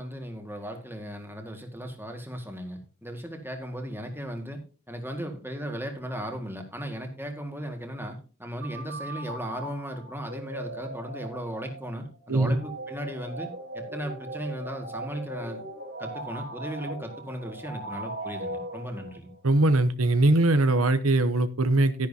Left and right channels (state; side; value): normal; both; correlation 0.66